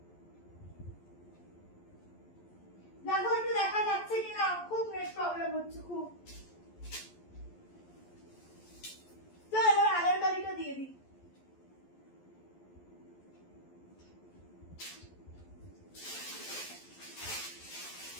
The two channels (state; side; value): late; right; 11 ms